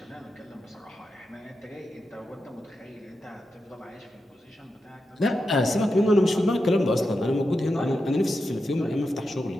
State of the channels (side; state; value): both; normal; correlation 0.88